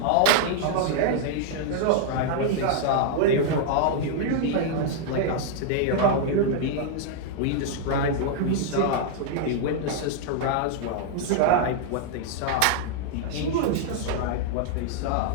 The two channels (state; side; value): different; both; correlation -0.01